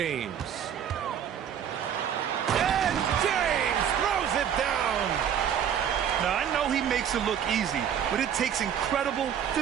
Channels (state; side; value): quieter; left; 8.9 dB